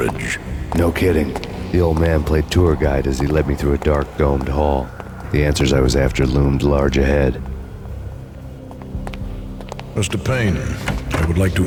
No kidding. The old man played tour guide as he led me through a dark, domed hall. The answers I was after loomed large ahead. Mr. Payne, I would like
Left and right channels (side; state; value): both; identical; correlation 1.00